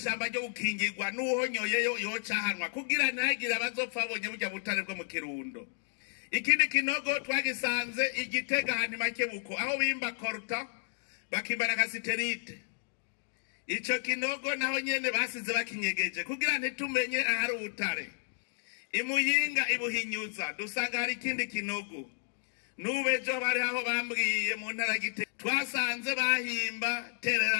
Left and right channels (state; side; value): silent; right; digital silence